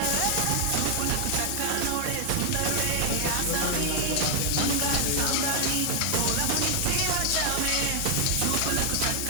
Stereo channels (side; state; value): both; different; correlation 0.00